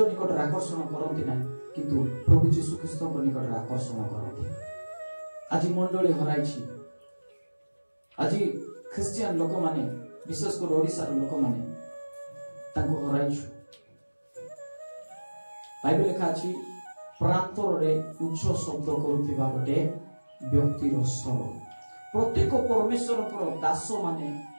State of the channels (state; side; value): inverted; both; correlation -1.00